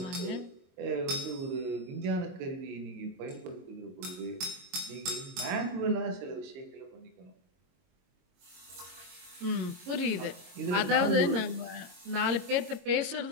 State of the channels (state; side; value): late; left; 22 ms